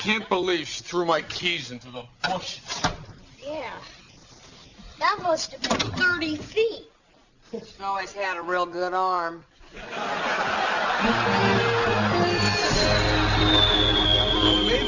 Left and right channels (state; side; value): identical; both; correlation 1.00